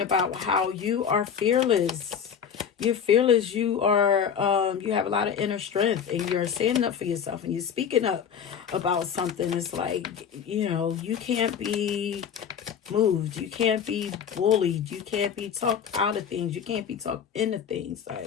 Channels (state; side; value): quieter; right; 7.8 dB